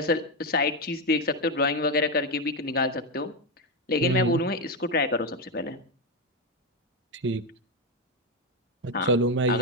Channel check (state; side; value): normal; both; correlation 0.08